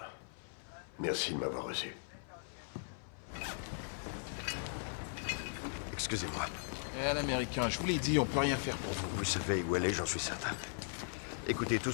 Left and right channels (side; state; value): right; silent; 52 dB below the other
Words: Merci de m'avoir reçu. Excusez-moi. Eh, l'américain, je vous l'ai dit, on peut rien faire pour vous. Vous savez où elle est, j'en suis certain. Écoutez, tout